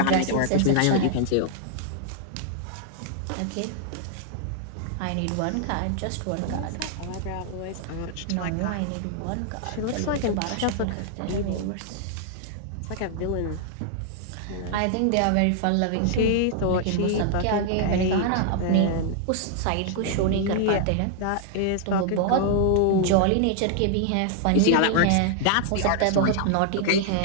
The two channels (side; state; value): both; different; correlation -0.01